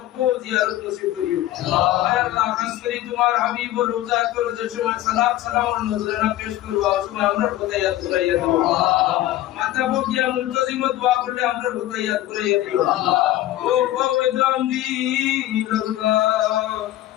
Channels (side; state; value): right; quieter; 14.5 dB